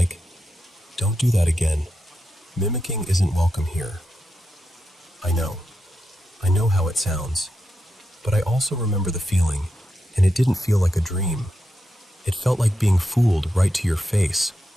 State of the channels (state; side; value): normal; both; correlation 0.87